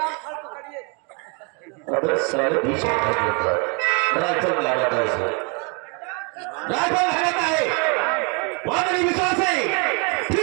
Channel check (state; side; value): quieter; left; 34.2 dB